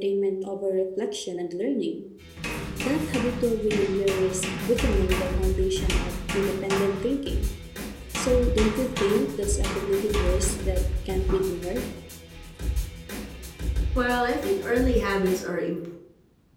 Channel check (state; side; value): identical; both; correlation 1.00